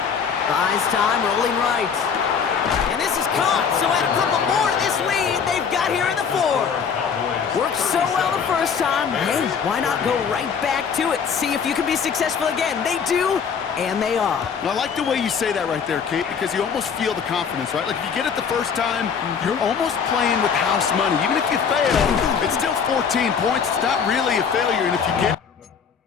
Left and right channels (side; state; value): right; quieter; 6.6 dB